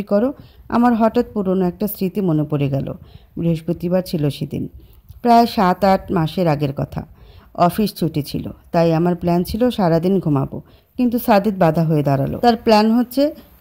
করো? আমার হঠাৎ পুরনো একটা স্মৃতি মনে পড়ে গেল। বৃহস্পতিবার ছিল সেদিন, প্রায় 7-8 মাসের আগের কথা। অফিস ছুটি ছিল, তাই আমার প্ল্যান ছিল সারাদিন ঘুমাবো। কিন্তু সাদিত বাধা হয়ে দাঁড়ালো। তার প্ল্যান হচ্ছে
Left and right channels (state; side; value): identical; both; correlation 1.00